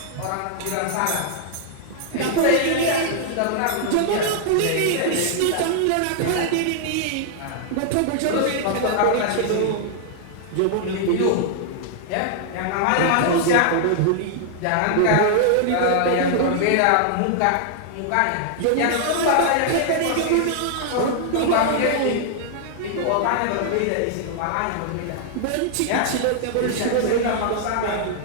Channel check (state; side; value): different; both; correlation -0.01